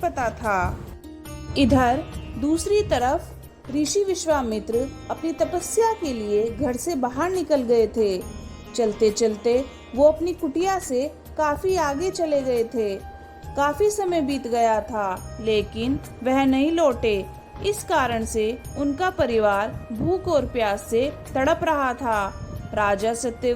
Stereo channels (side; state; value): both; identical; correlation 1.00